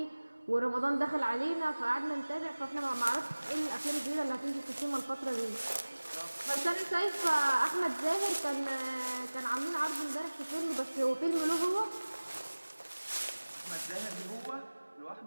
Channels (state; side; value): inverted; both; correlation -1.00